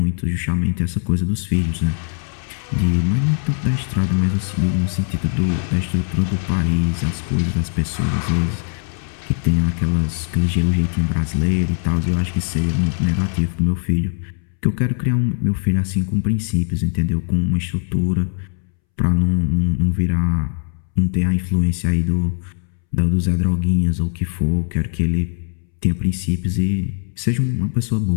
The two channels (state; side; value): silent; right; 66 dB below the other